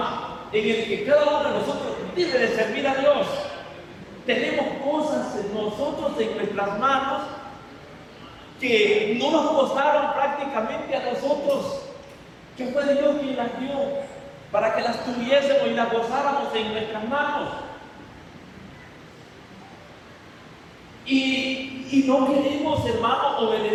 en el que cada uno de nosotros debe de servir a Dios. Tenemos cosas en nosotros, en nuestras manos, que no nos costaron prácticamente a nosotros, que fue Dios quien las dio, para que las tuviésemos y las gozáramos en nuestras manos. Y no queremos, hermano,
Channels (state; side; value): identical; both; correlation 1.00